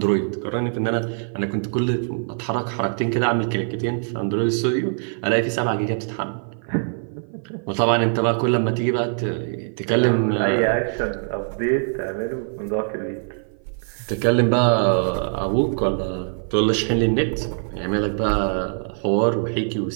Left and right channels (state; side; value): silent; left; 55 dB below the other